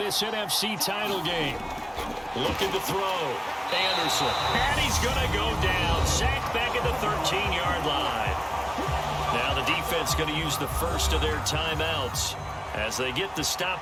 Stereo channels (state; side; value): identical; both; correlation 1.00